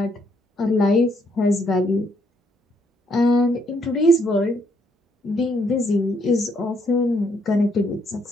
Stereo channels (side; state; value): both; normal; correlation 0.71